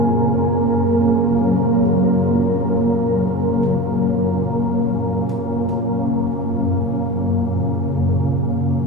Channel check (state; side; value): normal; both; correlation 0.33